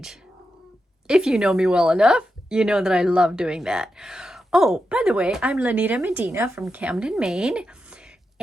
If you know me well enough, you know that I love doing that. Oh, by the way, I'm Lanita Medina from Camden, Maine.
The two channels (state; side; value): normal; both; correlation 0.88